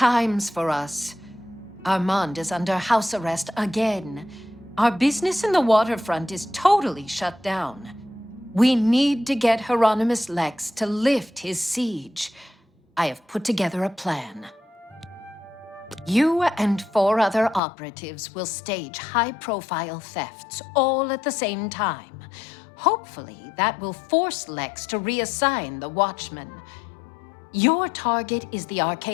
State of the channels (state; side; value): drops out; right; at 17.6 s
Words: for us. Armand is under house arrest again. Our business in the waterfront is totally shut down. We need to get Hieronymus Lex to lift his siege. I have put together a plan. You and 4 other operatives will stage high-profile thefts all at the same time. Hopefully, that will force Lex to reassign the Watchmen. Your target is the